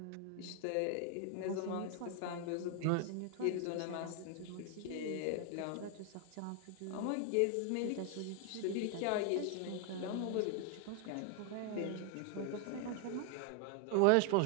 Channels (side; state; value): both; different; correlation 0.01